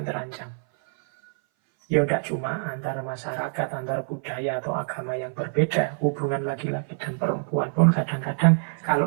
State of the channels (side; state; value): left; silent; 58 dB below the other